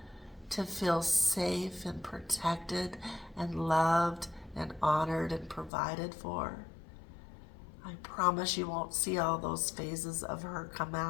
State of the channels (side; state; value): right; drops out; at 5.7 s